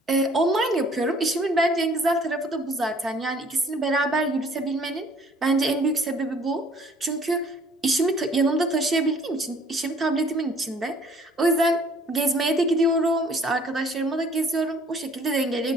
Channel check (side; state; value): both; normal; correlation 0.57